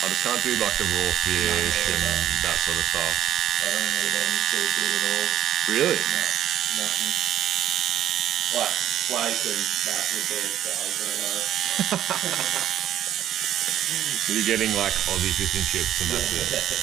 just can't do like the raw fish and that sort of stuff. I don't eat any seafood at all. Really? No, nothing. Like flake and that would be as far as I go. You're getting like Aussie fish and chips and that's it.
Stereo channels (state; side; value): quieter; left; 11.5 dB